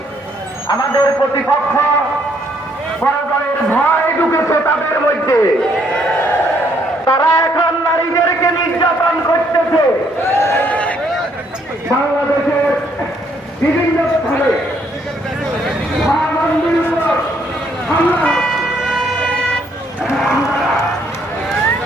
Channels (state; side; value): normal; both; correlation 0.69